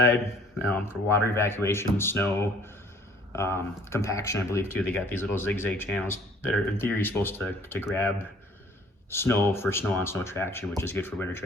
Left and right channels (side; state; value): both; normal; correlation 0.56